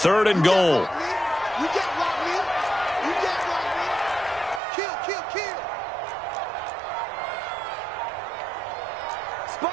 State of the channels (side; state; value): left; drops out; at 4.6 s